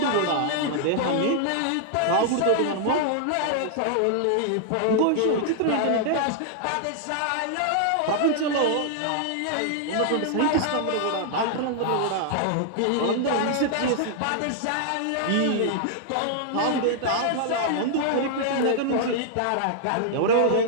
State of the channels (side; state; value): both; different; correlation -0.01